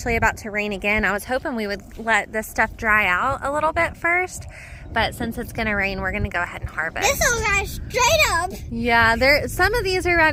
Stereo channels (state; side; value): identical; both; correlation 1.00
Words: about to rain again. I was hoping we would let this stuff dry out a little bit first, but since it's gonna rain, we're gonna go ahead and harvest. This will guys straight up. Yeah, some of these are